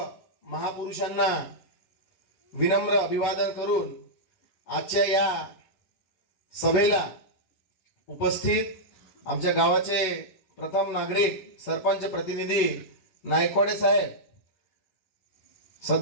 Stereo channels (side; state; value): right; late; 11 ms